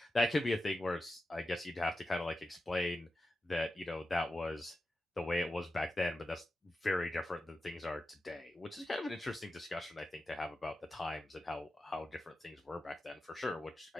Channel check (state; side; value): normal; both; correlation 0.91